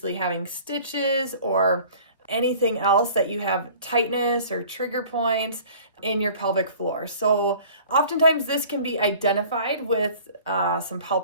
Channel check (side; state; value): both; inverted; correlation -0.48